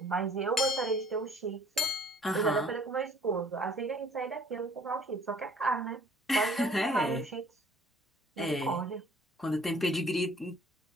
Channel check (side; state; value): both; normal; correlation 0.56